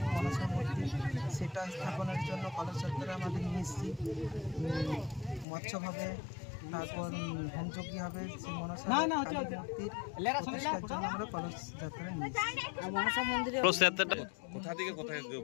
মনসা মূর্তি, সেটা স্থাপনের জন্য কলস যাত্রা আমাদের নিয়ে এসেছি। মৎস্যভাবে তারপর হোমযজ্ঞ হবে, সেই মনসা মূর্তির প্রতিষ্ঠার জন্য আমরা কলস যাত্রা নিয়ে এসেছি। মনসা মন্দিরে কোথা থেকে কোথায়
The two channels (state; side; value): drops out; right; at 5.5 s